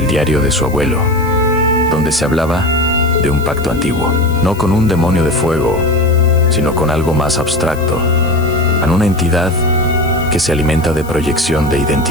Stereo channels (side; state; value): left; noise; hiss, 21 dB below the sound